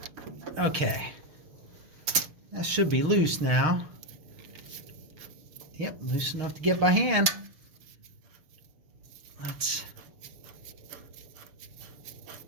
Okay, that should be loose now. Yep, loose enough to get by hand. Let's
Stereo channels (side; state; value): left; late; 6.5 ms